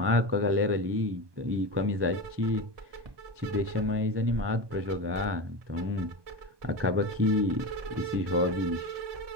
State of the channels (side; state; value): left; late; 1.2 ms